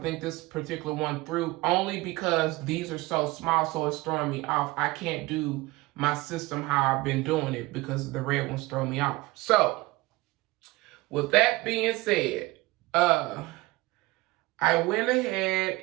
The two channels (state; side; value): quieter; left; 21.2 dB